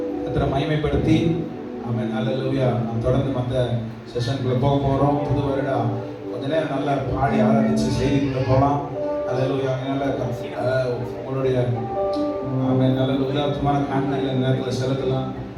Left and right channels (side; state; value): both; identical; correlation 1.00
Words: கர்த்தரை மகிமைப்படுத்தி ஆமென். ஹalleluya. நாம் தொடர்ந்து மற்ற செஷனுக்குள்ளே போக போகிறோம். புது வருடம் கொஞ்ச நேரம் நல்லா பாடி ஆராதிச்சு செய்திக்குள்ளே போகலாம். அல்லேலூயா. அதனால உங்களுடைய நல்ல உதாரணமான காண்களை நேரத்தில் செலுத்தலாம்.